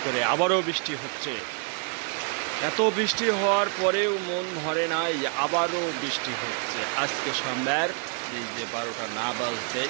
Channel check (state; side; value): quieter; left; 39.2 dB